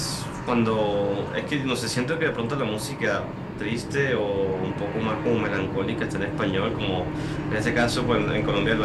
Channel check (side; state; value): both; identical; correlation 1.00